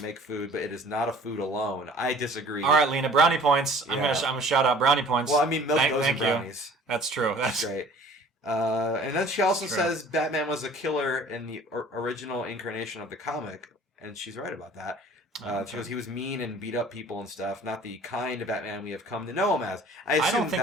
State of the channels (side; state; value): both; normal; correlation 0.49